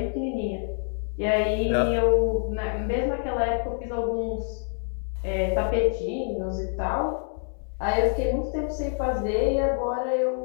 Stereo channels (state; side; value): silent; right; 56 dB below the other